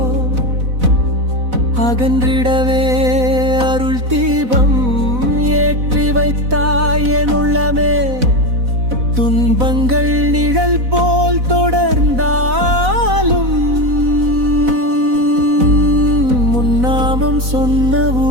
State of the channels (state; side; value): late; left; 4.0 ms